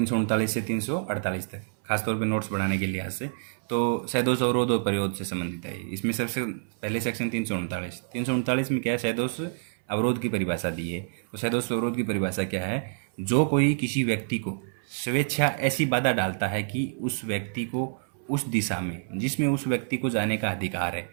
से 348 तक खासतौर पे नोट्स बढ़ाने के लिहाज से तो सैदोष अवरोध और परिरोध से संबंधित है। इसमें सबसे पहले सेक्शन 339 में क्या है, सैदोष अवरोध की परिभाषा दी है। तो सैदोष अवरोध की परिभाषा क्या है, जो कोई किसी व्यक्ति को स्वेच्छा ऐसी बाधा डालता है कि उस व्यक्ति को उस दिशा में जिसमें उस व्यक्ति को जाने का अधिकार है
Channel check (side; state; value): left; silent; 60 dB below the other